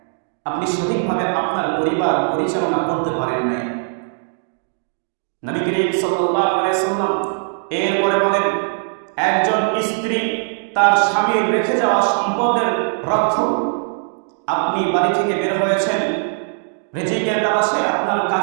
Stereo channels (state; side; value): silent; left; digital silence